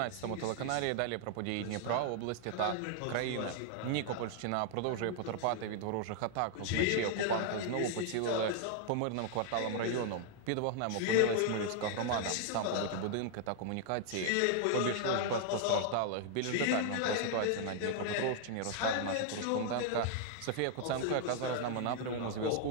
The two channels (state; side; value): different; both; correlation 0.00